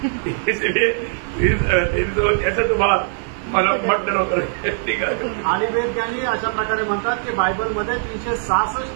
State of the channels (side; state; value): left; silent; digital silence